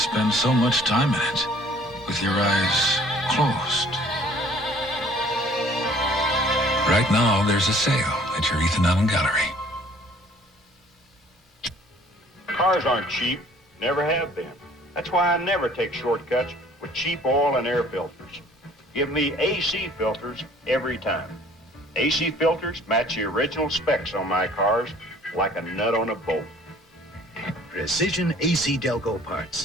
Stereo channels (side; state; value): both; normal; correlation 0.55